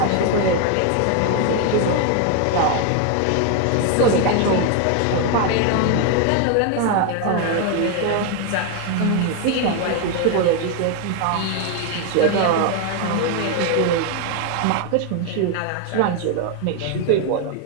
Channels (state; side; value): different; both; correlation 0.01